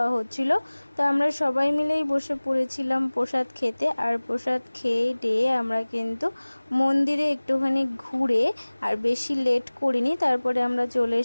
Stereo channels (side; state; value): both; inverted; correlation -1.00